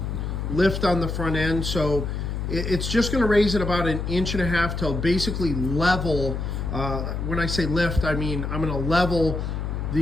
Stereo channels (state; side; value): noise; left; hum, 3 dB below the sound